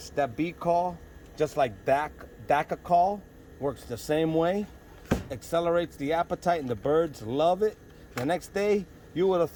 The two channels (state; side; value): identical; both; correlation 1.00